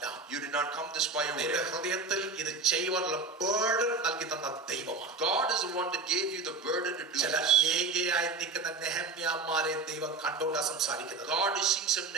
You did not come this by your നിന്റെ way. ഹൃദയത്തിൽ ഇത് ചെയ്യുവാനുള്ള ബർഡൻ നൽകി തന്ന ദൈവമാണ്. God is the one that gave you the burden to do ചില this. ഏകയായി നിൽക്കുന്ന നെഹമ്യാമാരെ ദൈവം കണ്ടോണ്ടാ സംസാരിക്കുന്നത്. God is seeing some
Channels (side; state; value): left; quieter; 3.9 dB